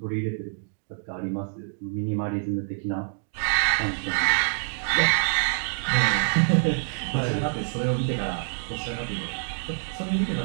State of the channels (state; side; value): silent; left; digital silence